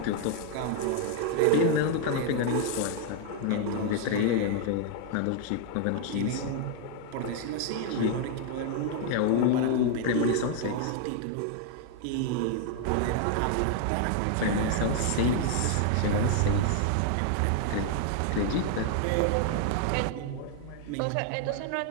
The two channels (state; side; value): different; both; correlation 0.00